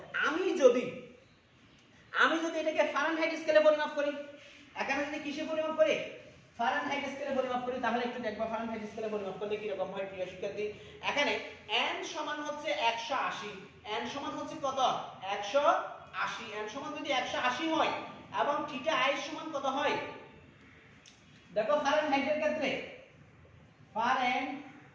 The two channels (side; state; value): both; identical; correlation 1.00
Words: আমি যদি এটাকে ফারেনহাইট স্কেলে পরিমাপ করি, এখানে যদি কিসে পরিমাপ করি ফারেনহাইট স্কেলে পরিমাপ করি, তাহলে একটু দেখবা ফারেনহাইট স্কেলে পরিমাপ করলে কি রকম হয় প্রিয় শিক্ষার্থী। এখানে n সমান হচ্ছে 180, n সমান হচ্ছে কত 180, n সমান যদি 180 হয় এবং থিটা i সমান কত হয়, দেখো ফারেনহাইটের ক্ষেত্রে